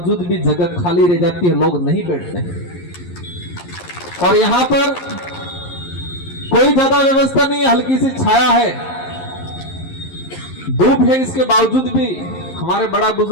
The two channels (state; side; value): late; right; 11 ms